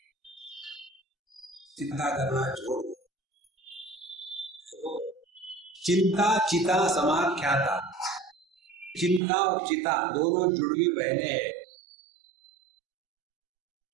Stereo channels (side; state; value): left; drops out; at 9.2 s